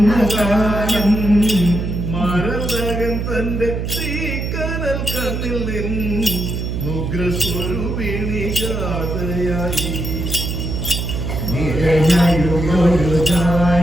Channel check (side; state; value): right; noise; hum, 3 dB below the sound